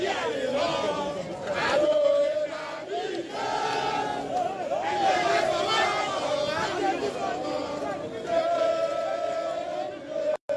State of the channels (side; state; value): both; identical; correlation 1.00